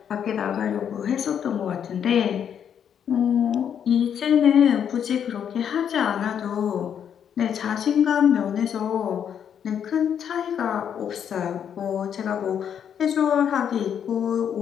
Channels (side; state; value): right; quieter; 8.5 dB